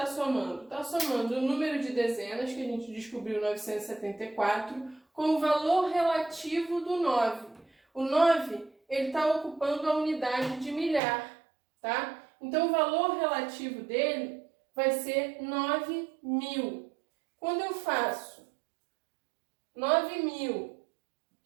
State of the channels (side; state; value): left; drops out; at 11.0 s